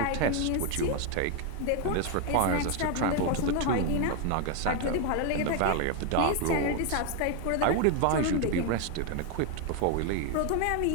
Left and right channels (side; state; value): both; different; correlation 0.01